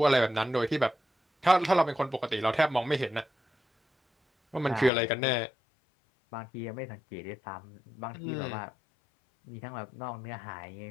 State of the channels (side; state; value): right; drops out; at 4.9 s